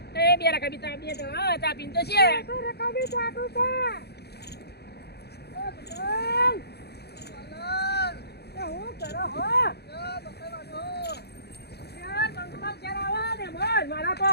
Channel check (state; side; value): late; right; 0.48 ms